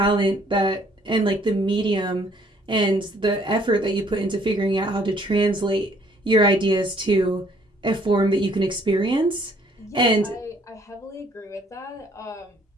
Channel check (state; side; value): normal; both; correlation 0.62